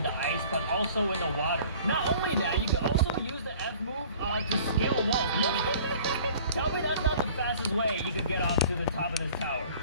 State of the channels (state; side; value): inverted; both; correlation -0.49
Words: the ice, but also in the water. Not only that, you can also use the F move to scale walls. Look, tell me that's not the fastest way you can get up to the top of this tower.